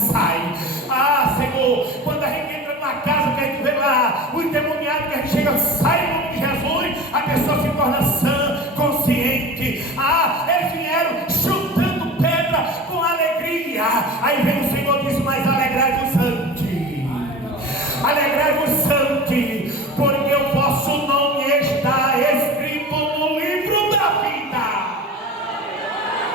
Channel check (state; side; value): normal; both; correlation 0.35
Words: Ah, Senhor, quando a gente entra numa casa que a gente vê lá o endemoniado, que a gente chega, sai em nome de Jesus, a pessoa se torna sã, consciente. Ah, eles vieram chutando pedra com alegria. Aí vem o Senhor e diz: mas alegrai-vos ante, alegrai-vos ante, porque o vosso nome está escrito no livro da vida.